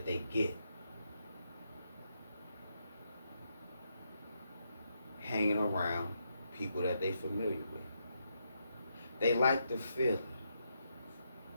they get hanging around people that they're familiar with. They like the feeling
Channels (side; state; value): both; inverted; correlation -0.81